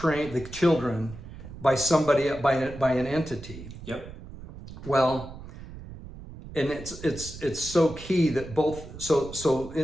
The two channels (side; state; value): right; noise; rumble, 14 dB below the sound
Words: the children, by somebody, by an entity. Yep. Well, and it's so key that